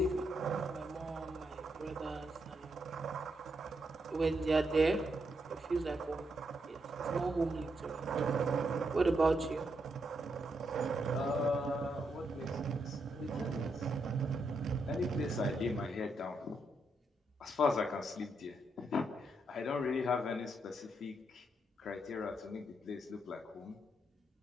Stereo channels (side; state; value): both; normal; correlation 0.80